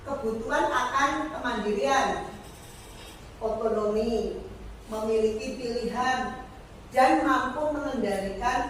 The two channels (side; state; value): both; identical; correlation 1.00